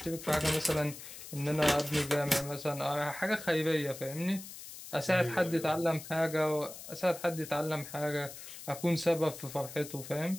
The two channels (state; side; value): noise; left; hiss, 13 dB below the sound